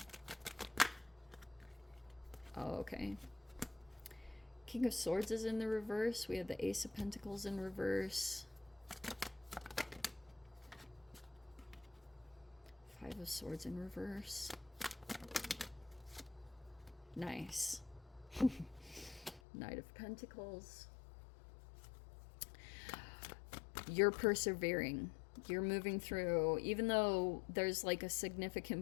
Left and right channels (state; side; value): drops out; right; at 19.4 s